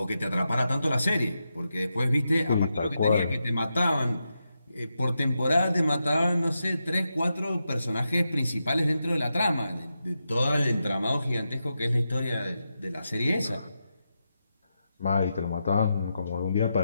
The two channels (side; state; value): both; inverted; correlation -0.87